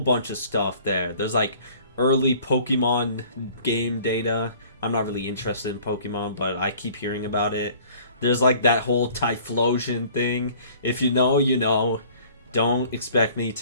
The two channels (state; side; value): inverted; both; correlation -0.52